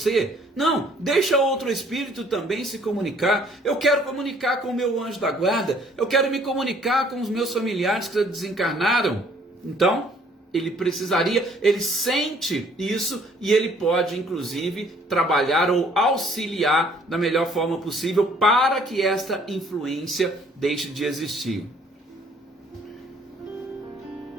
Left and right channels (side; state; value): both; normal; correlation 0.60